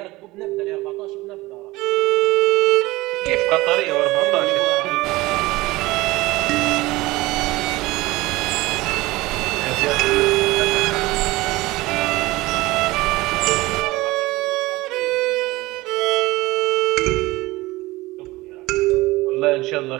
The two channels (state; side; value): quieter; left; 20.0 dB